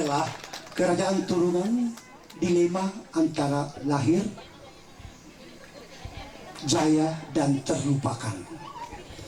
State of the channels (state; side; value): identical; both; correlation 1.00